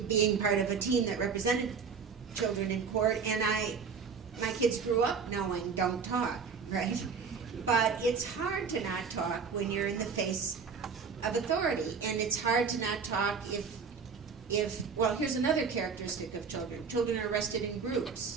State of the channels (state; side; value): quieter; left; 5.7 dB